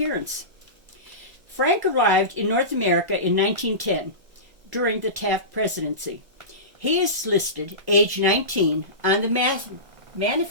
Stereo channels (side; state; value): left; late; 1.5 ms